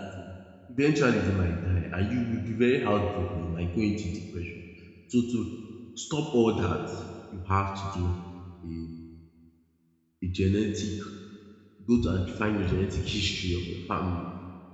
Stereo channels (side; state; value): both; identical; correlation 1.00